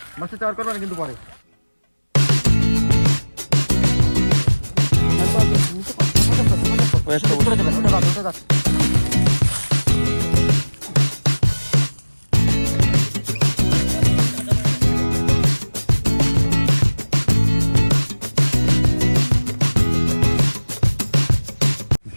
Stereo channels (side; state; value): both; inverted; correlation -1.00